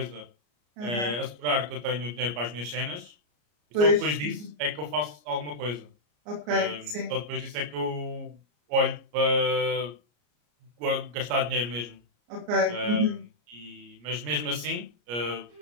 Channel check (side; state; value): left; late; 34 ms